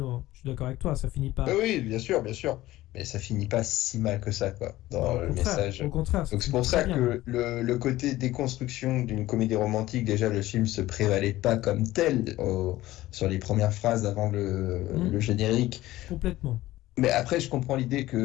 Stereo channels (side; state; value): right; quieter; 16.4 dB